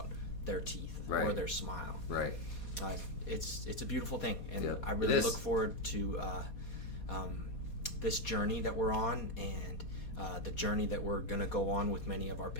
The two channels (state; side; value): late; right; 4.2 ms